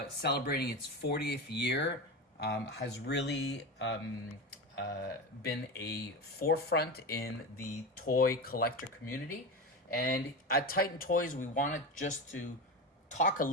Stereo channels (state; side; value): normal; both; correlation 0.22